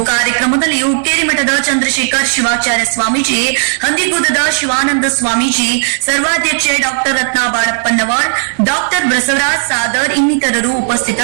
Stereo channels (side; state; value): left; silent; digital silence